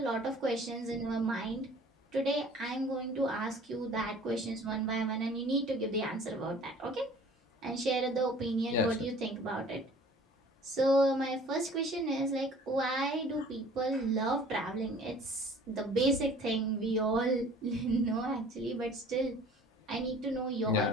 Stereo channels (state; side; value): normal; both; correlation 0.49